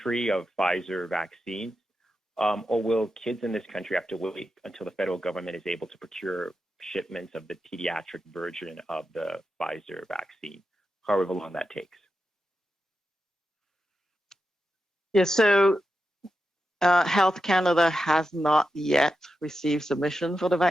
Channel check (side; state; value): both; normal; correlation 0.89